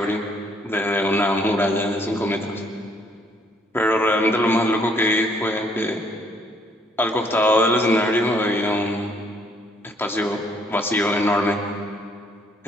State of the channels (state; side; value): normal; both; correlation 0.66